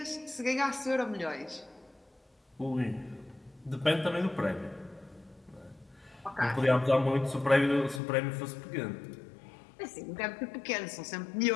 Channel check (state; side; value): drops out; right; at 8.0 s